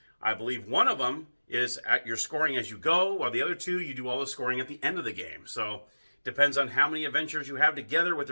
I believe one of them is at your scoring as you go, while the other 2, you do all the scoring at the end of the game. So it depends on how many adventures you have together with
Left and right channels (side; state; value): both; inverted; correlation -1.00